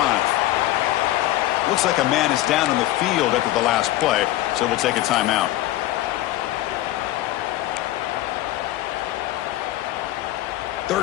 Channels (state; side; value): quieter; right; 15.4 dB